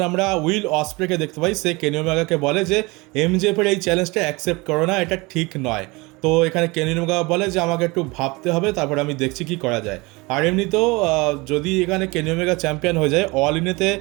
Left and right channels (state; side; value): quieter; left; 24.5 dB